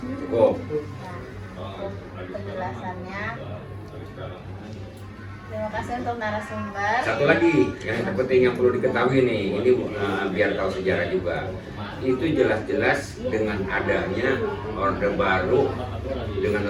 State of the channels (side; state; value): both; identical; correlation 1.00